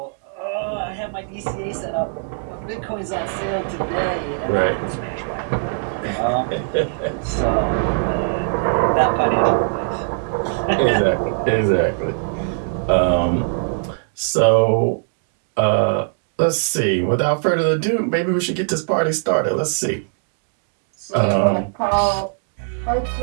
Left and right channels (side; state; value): left; silent; digital silence